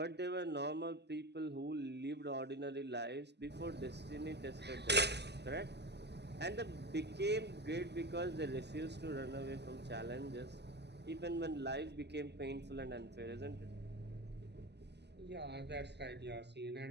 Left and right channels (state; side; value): late; left; 0.50 ms